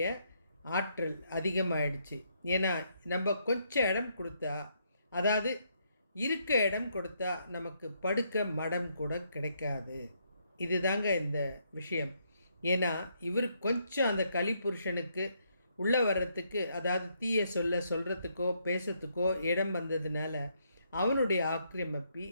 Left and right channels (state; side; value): inverted; both; correlation -0.74